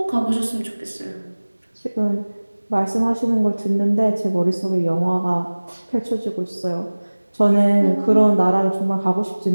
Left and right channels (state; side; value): inverted; both; correlation -1.00